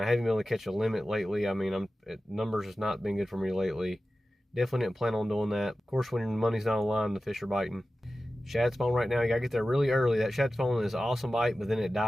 haven't been able to catch a limit lately. I mean, numbers has not been good for me lately. Definitely didn't plan on doing that. Of course, when your money's not on the line, the fish are biting. Shad spawn right now. You gotta get there really early. That shad spawn is an awesome bite, but then it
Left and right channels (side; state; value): both; normal; correlation 0.95